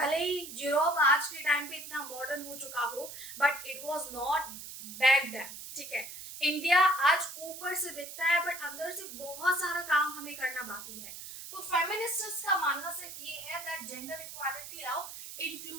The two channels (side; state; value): right; noise; hiss, 11 dB below the sound